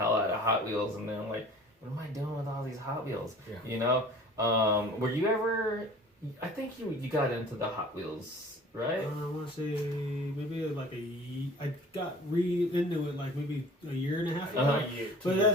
out of Hot Wheels, and then like, what am I doing with all these Hot Wheels? You know, were you ever? I think you got into the Hot Wheels, right? I want to say maybe like I got into it like maybe a year and a half ago. But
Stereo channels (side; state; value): both; normal; correlation 0.46